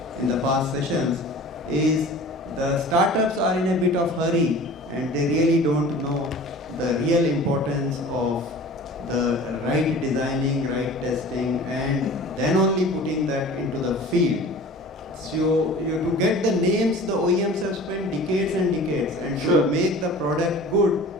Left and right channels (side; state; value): both; normal; correlation 0.41